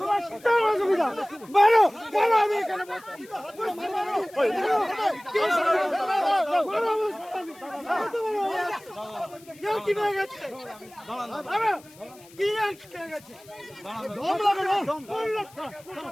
কিসের অসুবিধা? মারো, মারো, আমি এখানে বসছি। কি পেয়ে গেছে? কি পেয়ে গেছে? দম লাগে না?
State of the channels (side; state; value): left; noise; hiss, 24 dB below the sound